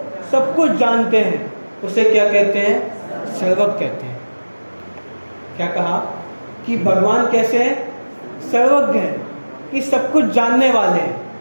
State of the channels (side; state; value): both; inverted; correlation -1.00